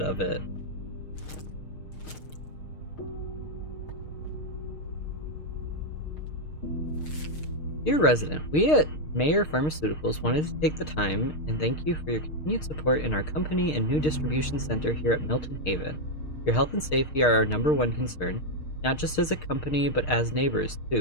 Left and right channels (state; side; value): late; right; 6.5 ms